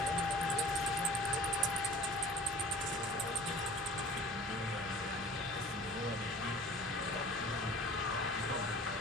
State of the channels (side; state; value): both; normal; correlation 0.45